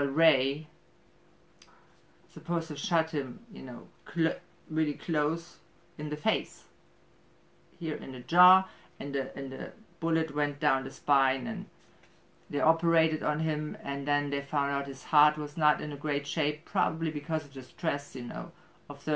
Ray supposed to shot him, you know, really close in the face, here in the jaw, and the bullet went down the spine, and they operated on him, and then they found out his heart was not in a great shape, probably because of the stress, you know, of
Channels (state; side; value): identical; both; correlation 1.00